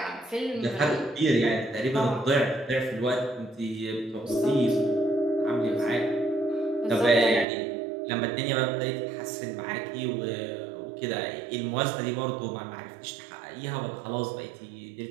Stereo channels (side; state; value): left; drops out; at 7.5 s